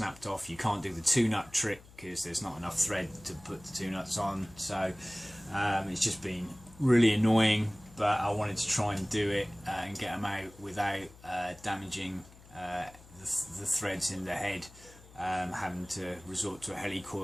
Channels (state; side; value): noise; left; hum, 22 dB below the sound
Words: off. You can't do the 2-nut trick because there's not enough thread to put the 2 nuts on. So it's just been really annoying, but I wanted to try and do it and get them out without damaging the threads in the head, having to resort to a